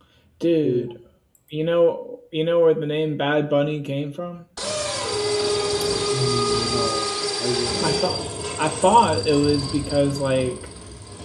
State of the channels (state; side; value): identical; both; correlation 1.00